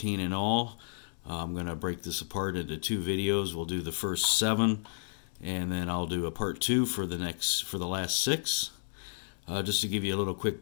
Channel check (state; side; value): silent; right; digital silence